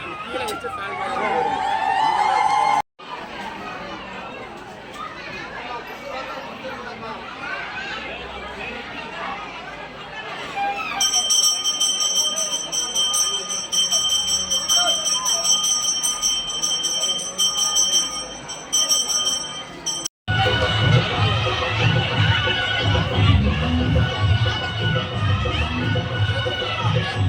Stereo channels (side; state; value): both; identical; correlation 1.00